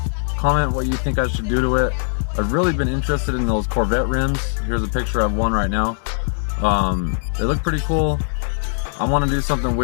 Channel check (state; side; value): silent; right; digital silence